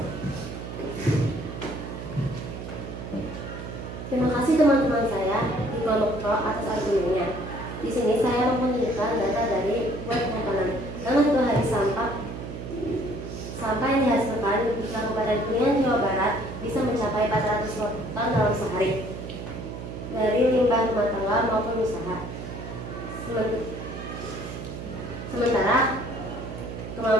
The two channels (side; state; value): right; noise; hum, 8 dB below the sound